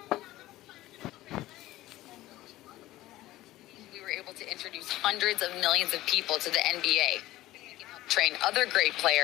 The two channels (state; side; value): quieter; right; 16.4 dB